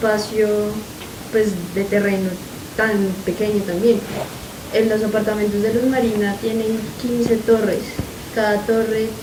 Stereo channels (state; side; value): identical; both; correlation 1.00